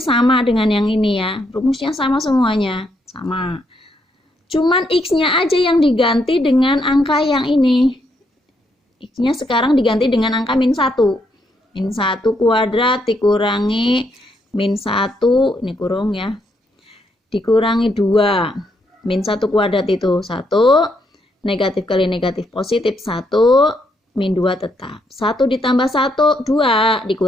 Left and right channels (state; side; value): normal; both; correlation 0.76